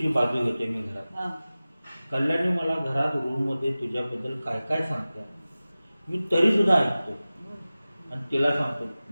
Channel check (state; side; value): inverted; both; correlation -0.97